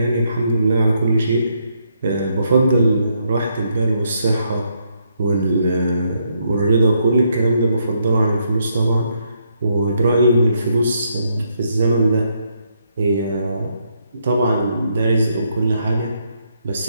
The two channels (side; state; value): both; inverted; correlation -0.75